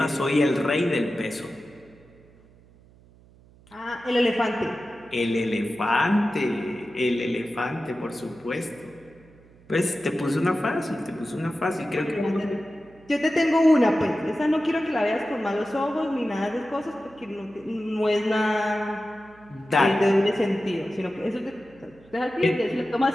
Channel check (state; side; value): noise; right; hum, 27 dB below the sound